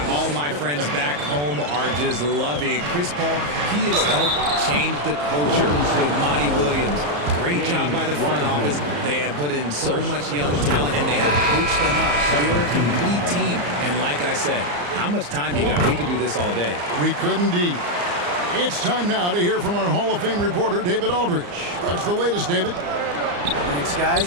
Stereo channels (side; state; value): left; late; 34 ms